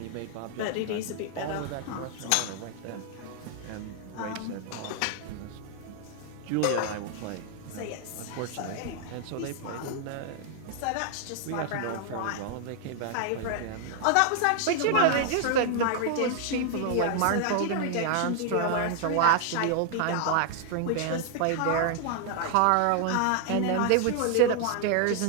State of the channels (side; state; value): both; different; correlation 0.00